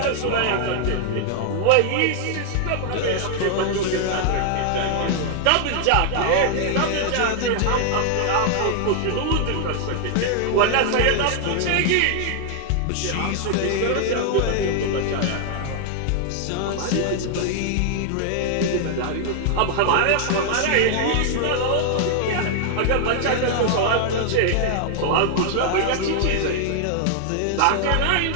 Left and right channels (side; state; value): both; different; correlation 0.00